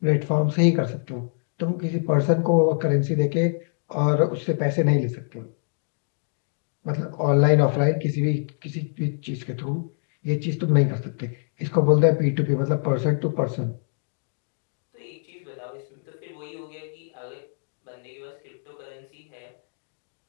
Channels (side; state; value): right; silent; digital silence